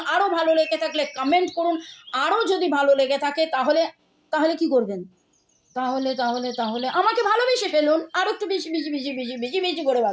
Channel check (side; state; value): both; identical; correlation 1.00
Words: আরও ভালো লেগে থাকলে কমেন্ট করুন। আরও যদি ভালো লেগে থাকে তাহলে কি করবেন, তাহলে আমাকে ভালোবেসে ফেলুন, আরও একটু বেশি করে